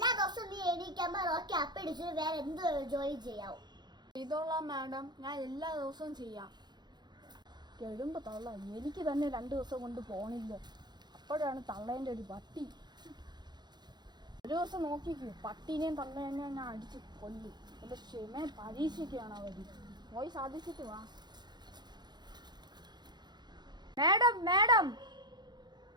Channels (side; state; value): left; late; 0.21 ms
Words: ദിവസവും നീ എണീക്കുമ്പോ റോക്കി അപ്പി ഇടിച്ചിട്ട് വേറെ എന്ത് ജോലി ചെയ്യാവും? ചെയ്തോളാം മാഡം, ഞാൻ എല്ലാ ദിവസവും ചെയ്യാം. കേടുമ്പോ തള്ള എനിക്ക് തന്നെ 2 ദിവസം കൊണ്ട് പോണില്ല. അപ്പോഴാണ് തള്ളേൻ്റെ ഒരു പട്ടി. ഒരു ദിവസം നോക്കിക്കൂ, പട്ടീനെയും തള്ളേനെയും ഞാൻ അടിച്ച് കൊല്ലും. എന്റെ ക്ഷമയെ പരീക്ഷിക്കുകയാണ് അവർ. പോയി സാധിച്ചിട്ട് വാ. മാഡം മാഡം,